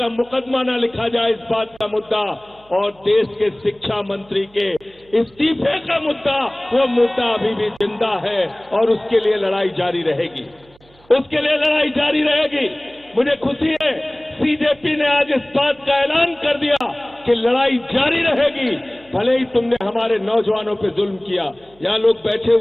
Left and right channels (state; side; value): noise; right; hum, 29 dB below the sound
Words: मुकदमा न लिखा जाए, इस बात का मुद्दा, और देश के शिक्षा मंत्री के इस्तीफे का मुद्दा, वो मुद्दा अभी भी जिंदा है और उसके लिए लड़ाई जारी रहेगी, उसके लिए लड़ाई जारी रहेगी। मुझे खुशी है सीजेपी ने आज इस बात का ऐलान कर दिया कि लड़ाई जारी रहेगी, भले ही तुमने हमारे नौजवानों पे जुल्म किया। यहाँ लोग बैठे